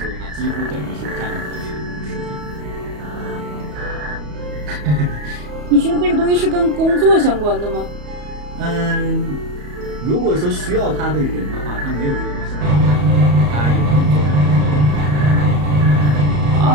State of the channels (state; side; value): late; left; 34 ms